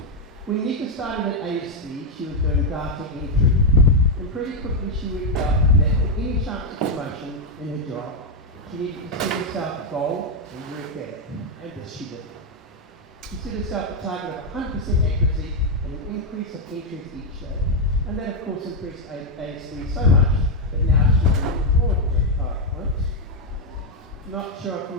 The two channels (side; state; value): both; normal; correlation 0.03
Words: When Meeka started at ASD, she was doing data entry. And pretty quickly she worked out that for any chance of promotion in her job, she needed to set herself a goal and work at it. And this she did. She set herself a target of 100% accuracy and an increase of entries each day. And that of course impressed ASD so much that now she's doing a broad PowerPoint. Not sure if I'm